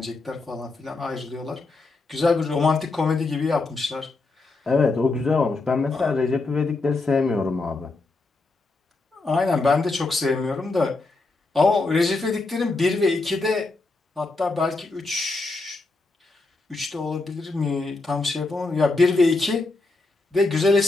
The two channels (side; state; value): right; quieter; 3.4 dB